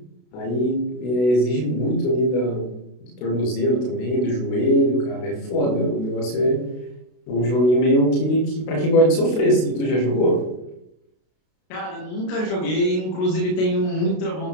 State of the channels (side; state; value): right; late; 32 ms